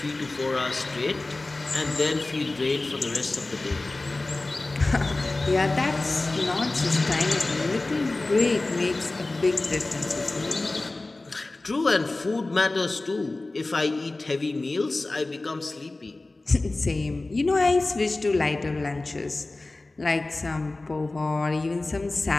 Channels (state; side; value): quieter; right; 3.1 dB